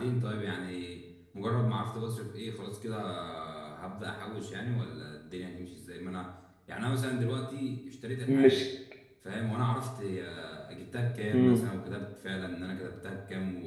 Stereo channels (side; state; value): both; identical; correlation 1.00